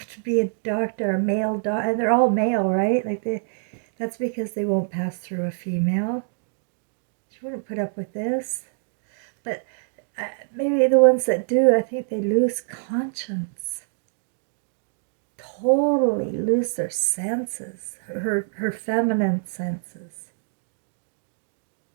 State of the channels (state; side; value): silent; left; digital silence